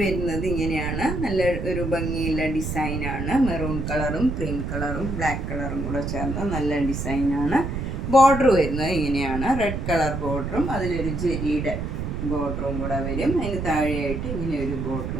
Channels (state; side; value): noise; right; rumble, 4 dB below the sound